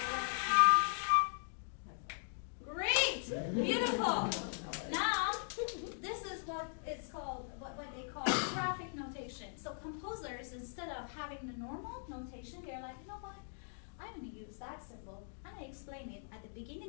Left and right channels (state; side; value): silent; right; digital silence